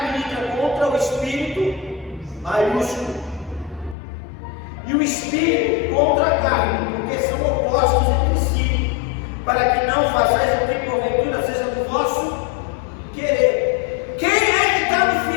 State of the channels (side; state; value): right; drops out; at 4.0 s